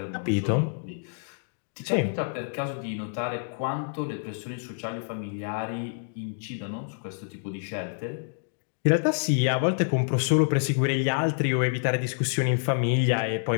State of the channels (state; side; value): silent; right; digital silence